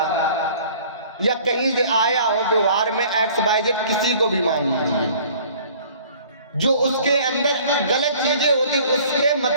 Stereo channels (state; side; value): inverted; both; correlation -0.51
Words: या कहीं से आया हो, व्यवहार में XYZ किसी को भी मान लीजिए, जो उसके अंदर गलत चीजें होती, उसके